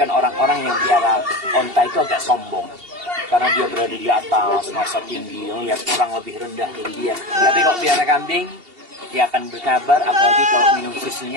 orang-orang yang piara onta itu agak sombong. Karena dia berada di atas, masa tinggi, lihat orang lebih rendah dari dia. Tapi kalau piara kambing, dia akan berkabar, apalagi kalau minum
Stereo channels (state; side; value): late; left; 2.8 ms